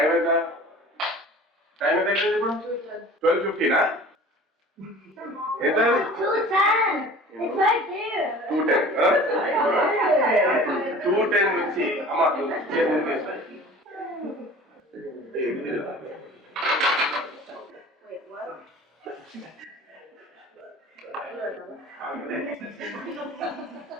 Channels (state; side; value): normal; both; correlation 0.43